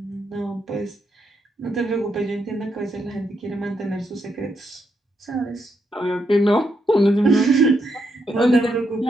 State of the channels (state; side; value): normal; both; correlation 0.79